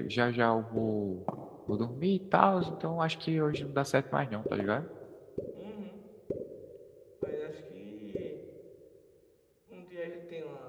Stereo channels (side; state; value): both; identical; correlation 1.00